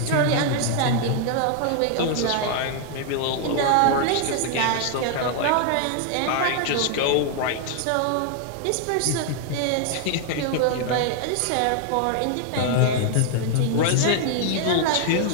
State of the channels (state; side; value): different; both; correlation 0.00